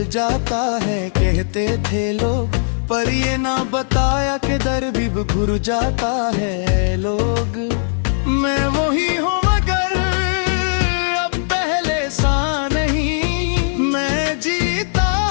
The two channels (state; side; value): silent; right; digital silence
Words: जाता है कहते थे लोग, पर ये ना बताया कि दर भी घुर जाता है लोग। मैं वही हूँ मगर अब पहले सा नहीं। मैं जीता